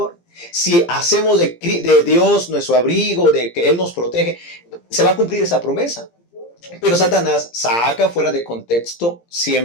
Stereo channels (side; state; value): right; late; 17 ms